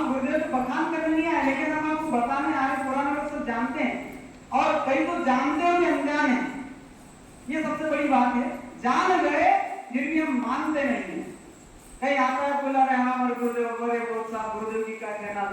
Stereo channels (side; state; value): both; identical; correlation 1.00